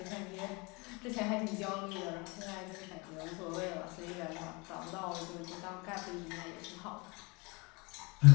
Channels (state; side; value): quieter; right; 27.8 dB